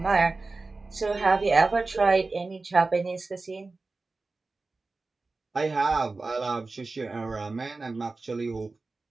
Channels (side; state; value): left; quieter; 3.6 dB